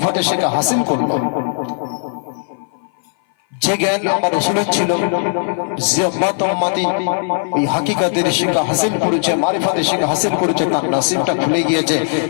শিক্ষা হাসিল করলো, যে জ্ঞান আমার রাসূলের ছিল, যে উম্মত উম্মতি ওই হাকিকাতের শিক্ষা হাসিল করেছে, মারিফাতের শিক্ষা হাসিল করেছে, তার নসিবটা খুলে গিয়েছে।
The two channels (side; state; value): right; silent; 57 dB below the other